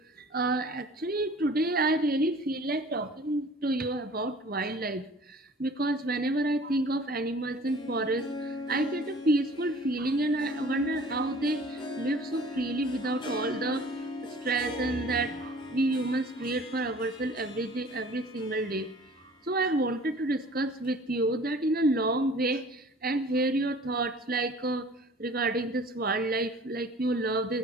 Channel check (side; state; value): both; normal; correlation 0.48